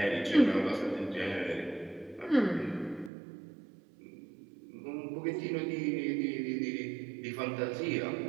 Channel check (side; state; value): left; drops out; at 3.1 s